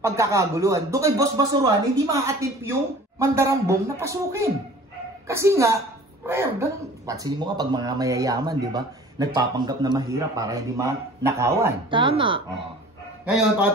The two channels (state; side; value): normal; both; correlation 0.46